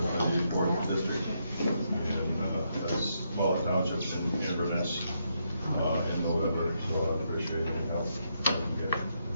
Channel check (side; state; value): both; inverted; correlation -0.79